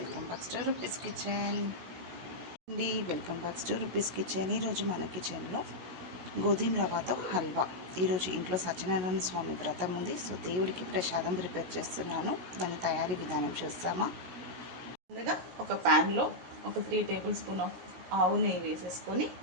back to Rupi's kitchen అండి. Welcome back to Rupi's kitchen. ఈరోజు మన కిచెన్లో గోధుమ రవ్వతో హల్వా. ఈరోజు ఇంట్లో సత్యనారాయణ స్వామి వ్రతం ఉంది, సో దేవుడికి ప్రసాదం ప్రిపేర్ చేస్తున్నాను. దాని తయారీ విధానం చూస్తామా. ముందుగా ఒక ప్యాన్లో ఒక 3 టేబుల్ స్పూన్ ఆఫ్ ఆవు నెయ్యి వేసేసుకొని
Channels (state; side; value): late; left; 17 ms